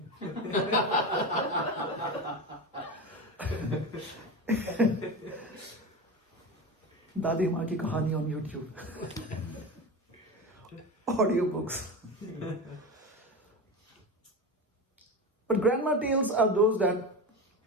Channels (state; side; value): normal; both; correlation 0.23